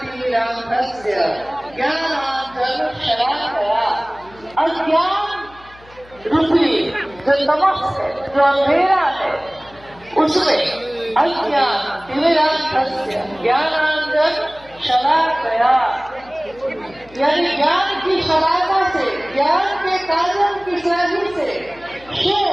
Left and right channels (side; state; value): left; noise; hum, 24 dB below the sound